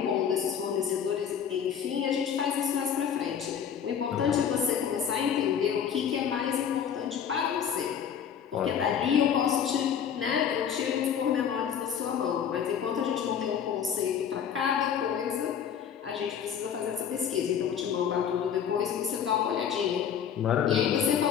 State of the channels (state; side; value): quieter; right; 8.2 dB